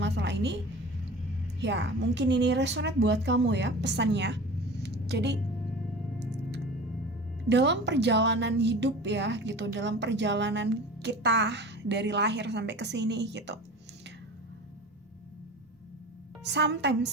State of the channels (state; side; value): normal; both; correlation 0.37